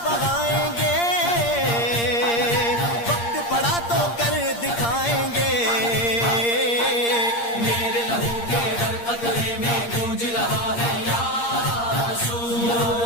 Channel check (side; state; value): right; late; 8.6 ms